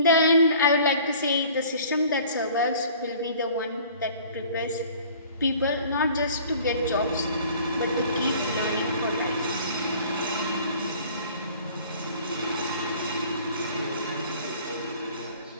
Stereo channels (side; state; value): both; inverted; correlation -0.50